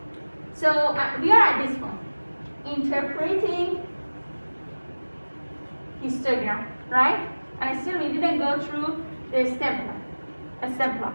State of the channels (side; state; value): both; inverted; correlation -1.00